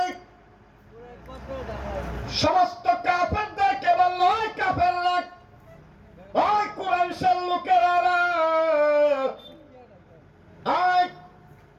সমস্ত কাফেরদেরকে বলল, ওই কাফেররা, ওই কুরাইশের লোকেরা, ওই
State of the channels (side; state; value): both; identical; correlation 1.00